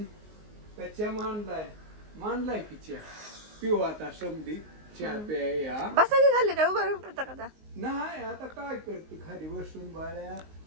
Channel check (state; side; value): late; left; 19 ms